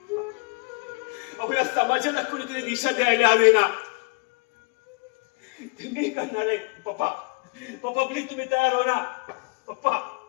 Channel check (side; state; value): right; quieter; 31.0 dB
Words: या समाजाला कुणीतरी दिशा द्यायला हवी ना. मी करणार आहे. पप्पा प्लीज तुम्ही तयार हो ना. पप्पा